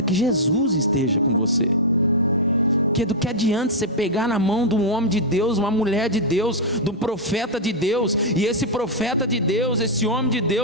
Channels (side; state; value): both; normal; correlation -0.04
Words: que Jesus esteja com você. Porque do que adianta você pegar na mão de um homem de Deus, uma mulher de Deus, de um profeta de Deus, e esse profeta de Deus, esse homem de